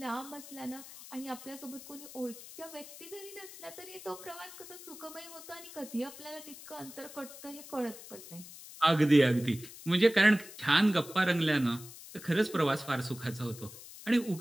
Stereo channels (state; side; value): noise; left; hiss, 15 dB below the sound